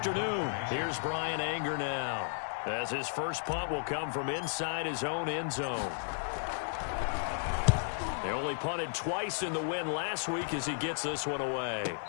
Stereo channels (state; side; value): silent; right; 55 dB below the other